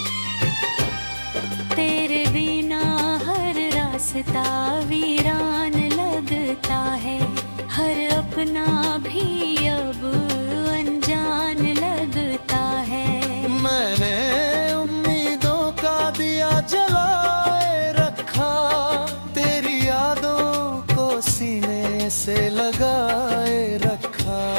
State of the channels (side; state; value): both; inverted; correlation -1.00